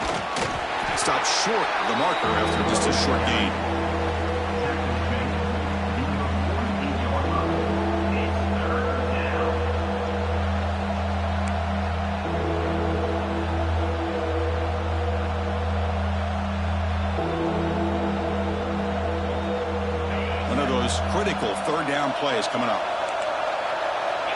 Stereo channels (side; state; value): both; identical; correlation 1.00